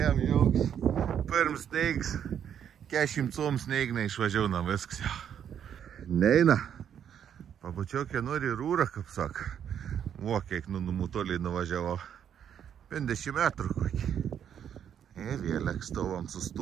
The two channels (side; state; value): left; quieter; 8.9 dB